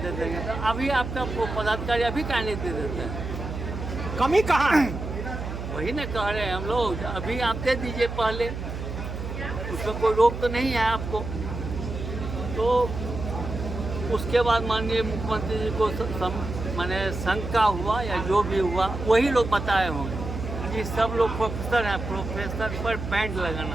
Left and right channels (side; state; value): right; noise; hum, 6 dB below the sound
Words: दे देंगे, तो अभी आपका पदाधिकारी अभी क्या नहीं दे देते हैं? कमी कहाँ है? वही ना कह रहे हैं हम लोग, अभी आप दे दीजिए पहले, उसमें कोई रोक तो नहीं है आपको। तो उसके बाद माननीय मुख्यमंत्री जी को माने शंका हुआ या जो भी हुआ, वही लोग बताए होंगे कि सब लोग प्रोफेसर हैं, प्रोफेसर पर बैंड